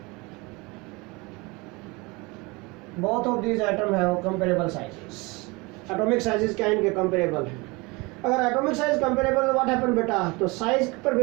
both of these atom है कंपेरेबल साइजेस, एटॉमिक साइजेस क्या इनके कंपेरेबल हैं। अगर atomic size comparable what happen बेटा, तो साइज पर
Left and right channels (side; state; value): left; quieter; 25.6 dB